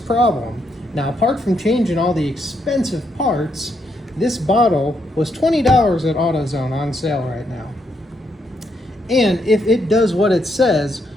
Now, apart from changing all the expensive parts, this bottle was $20 at AutoZone on sale right now. And if it does what it says,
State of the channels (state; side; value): normal; both; correlation 0.77